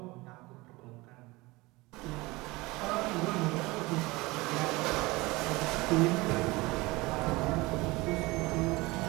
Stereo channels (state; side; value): quieter; left; 22.1 dB